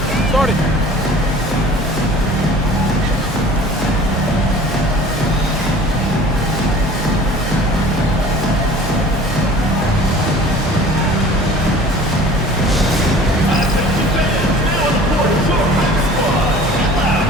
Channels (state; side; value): normal; both; correlation 0.46